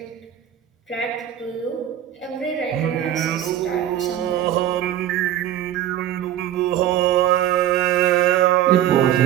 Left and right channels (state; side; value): quieter; left; 11.5 dB